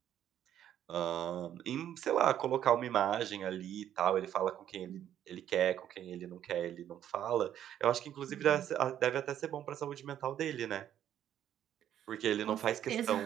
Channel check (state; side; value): quieter; left; 10.7 dB